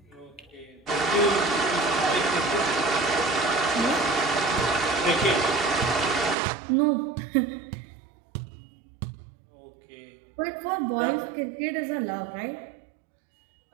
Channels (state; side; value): drops out; left; at 6.4 s